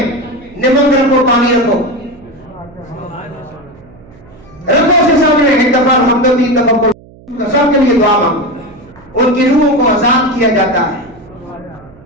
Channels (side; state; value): right; noise; hum, 24 dB below the sound